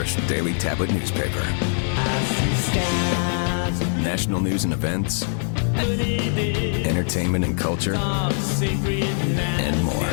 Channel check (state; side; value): silent; right; digital silence